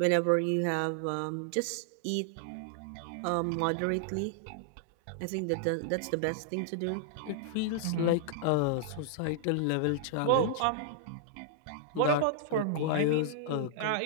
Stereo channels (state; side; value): different; both; correlation -0.01